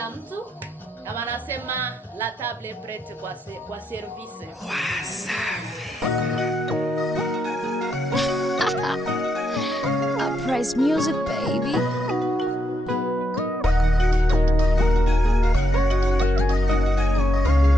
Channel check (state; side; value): normal; both; correlation 0.80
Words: mtu. Na wanasema la table est prête kwa service. Uprise music baby.